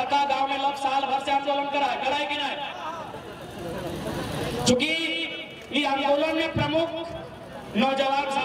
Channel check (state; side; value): identical; both; correlation 1.00